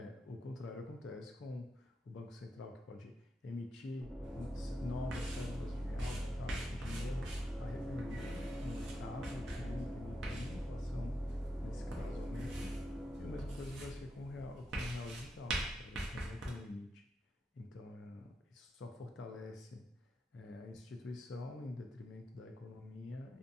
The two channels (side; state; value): both; normal; correlation 0.85